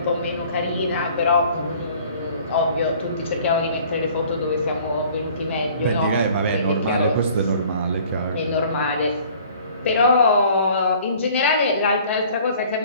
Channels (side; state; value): both; inverted; correlation -0.52